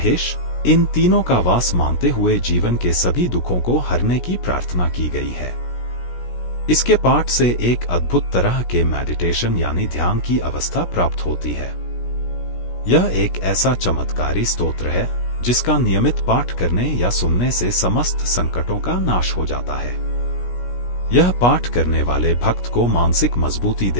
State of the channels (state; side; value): late; right; 17 ms